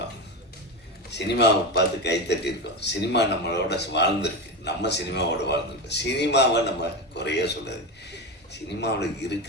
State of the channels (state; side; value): normal; both; correlation 0.19